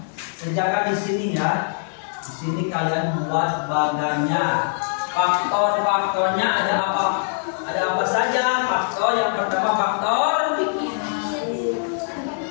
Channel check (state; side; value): silent; right; digital silence